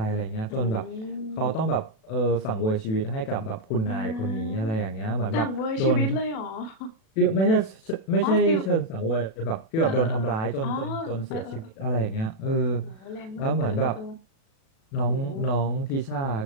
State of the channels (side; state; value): right; late; 37 ms